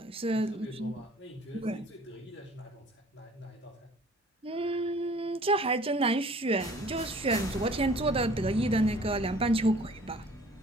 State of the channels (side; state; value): both; normal; correlation 0.51